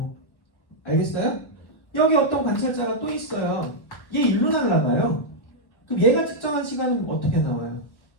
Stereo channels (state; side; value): late; right; 1.1 ms